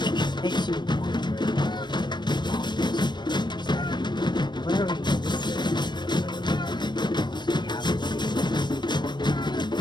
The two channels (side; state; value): right; late; 0.22 ms